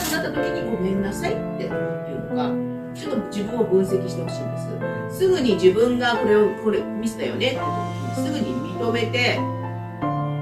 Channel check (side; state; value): both; identical; correlation 1.00